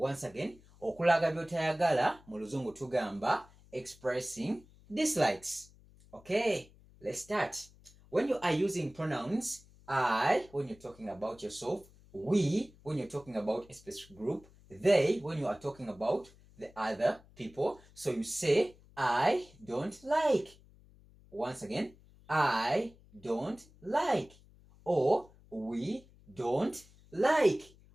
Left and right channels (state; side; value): noise; left; hum, 25 dB below the sound